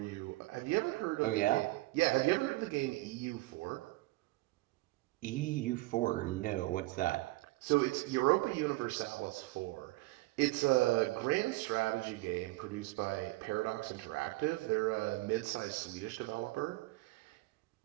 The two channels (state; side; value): quieter; left; 20.6 dB